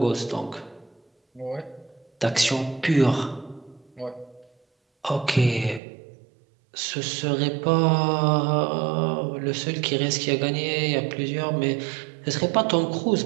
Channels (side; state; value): left; drops out; at 5.8 s